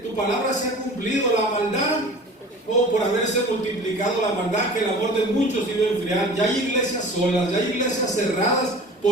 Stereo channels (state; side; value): normal; both; correlation 0.41